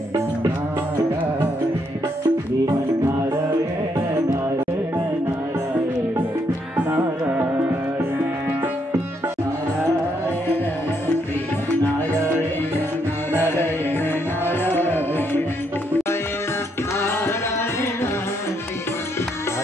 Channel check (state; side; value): normal; both; correlation 0.75